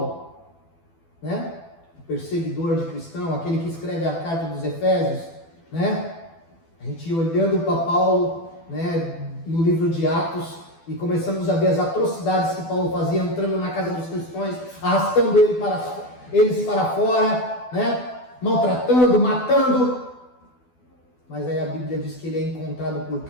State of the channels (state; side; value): late; right; 12 ms